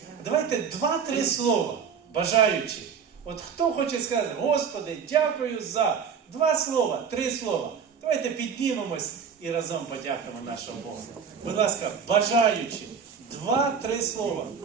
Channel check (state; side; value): quieter; left; 6.6 dB